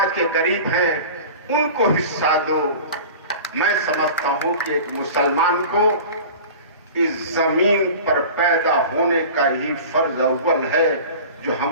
के गरीब हैं, उनको हिस्सा दो। मैं समझता हूं कि एक मुसलमान को इस जमीन पर पैदा होने का ही फर्ज अव्वल है जो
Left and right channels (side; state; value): both; inverted; correlation -0.37